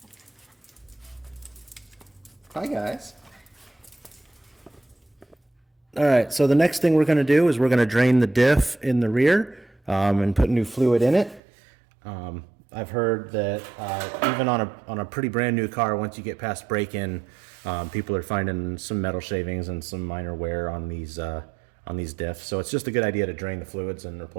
Hi guys. All right, so the next thing we're gonna do is we're gonna drain the diff in the rear and put new fluid in it. I've heard that even on a pretty brand new car, once you get past break-in, people are finding some metal shavings and some minor wear on these diffs. So it's just a good idea to drain the fluids and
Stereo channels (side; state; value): left; drops out; at 11.4 s